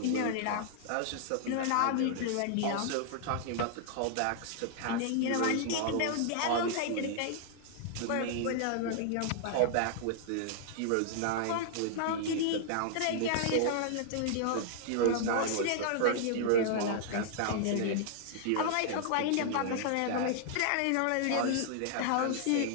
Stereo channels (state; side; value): different; both; correlation -0.01